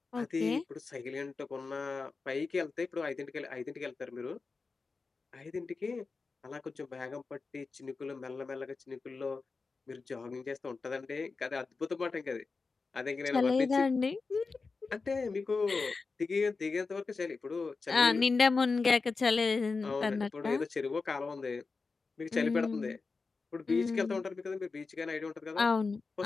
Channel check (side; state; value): right; quieter; 4.3 dB